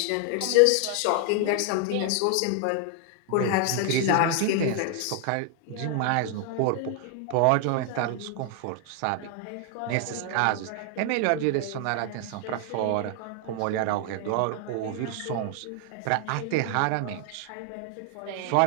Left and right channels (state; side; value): different; both; correlation 0.00